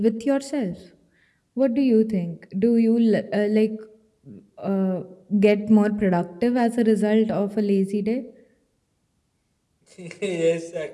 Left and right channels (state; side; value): identical; both; correlation 1.00